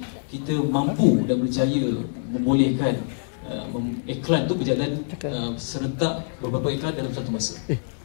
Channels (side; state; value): right; silent; 62 dB below the other